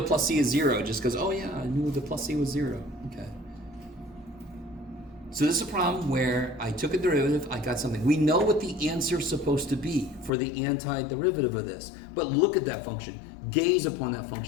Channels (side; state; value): right; drops out; at 10.3 s